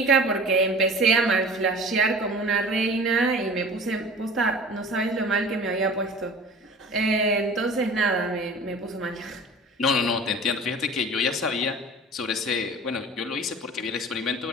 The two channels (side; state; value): both; normal; correlation 0.41